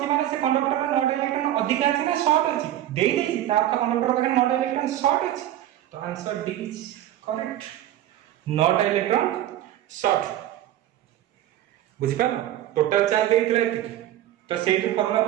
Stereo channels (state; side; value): quieter; left; 12.8 dB